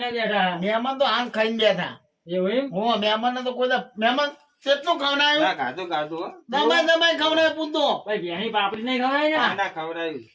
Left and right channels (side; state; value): both; identical; correlation 1.00